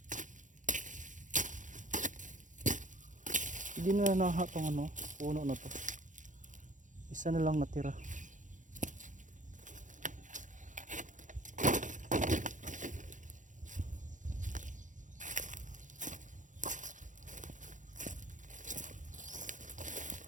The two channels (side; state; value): left; late; 0.37 ms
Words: Hindi na naha tong puno na to. Isa na lang natira.